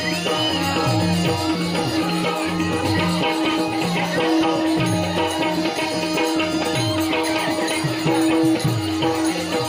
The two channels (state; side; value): identical; both; correlation 1.00